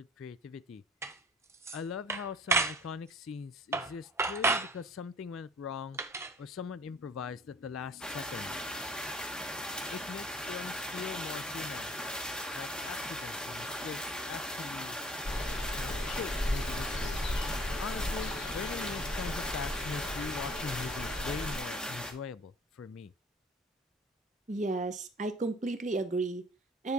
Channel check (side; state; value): both; normal; correlation 0.52